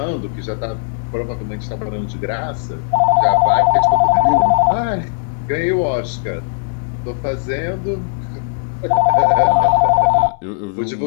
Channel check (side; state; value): right; silent; digital silence